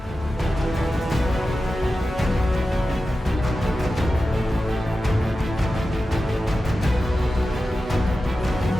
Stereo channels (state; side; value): normal; both; correlation 0.93